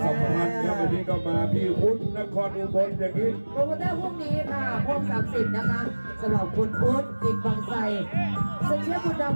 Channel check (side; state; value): both; inverted; correlation -1.00